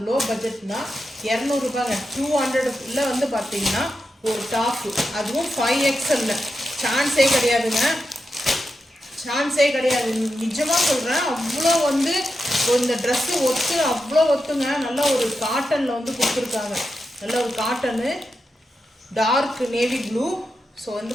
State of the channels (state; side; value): normal; both; correlation 0.88